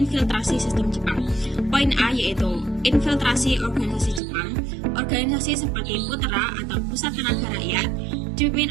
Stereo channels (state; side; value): drops out; left; at 4.2 s